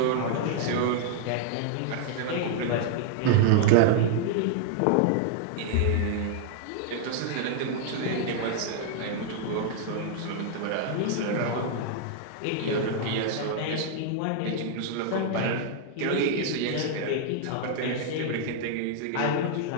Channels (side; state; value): both; different; correlation -0.01